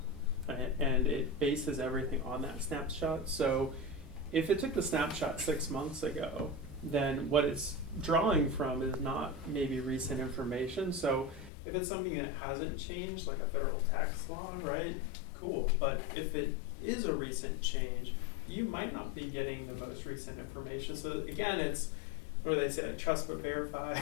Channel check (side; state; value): right; drops out; at 11.5 s